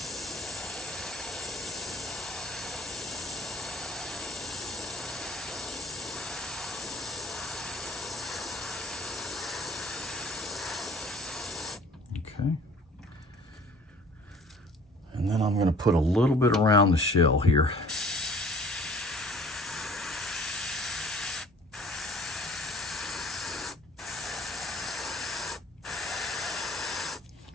Okay. And then I'm going to put a little bit around the shell here.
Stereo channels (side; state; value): both; normal; correlation 0.51